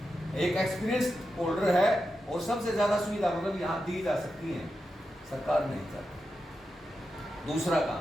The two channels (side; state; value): both; normal; correlation 0.89